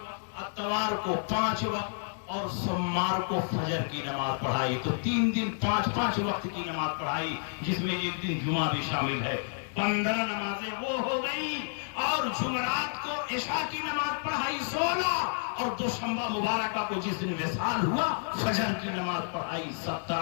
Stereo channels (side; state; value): right; silent; digital silence